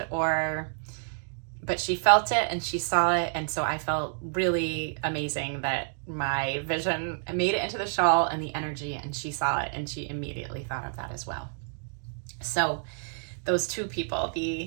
but she felt it and she saw it. And so I felt really amazing that my vision made it into the shawl and the energy, and she saw it and she immediately thought of that as well. So those two people,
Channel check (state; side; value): silent; left; digital silence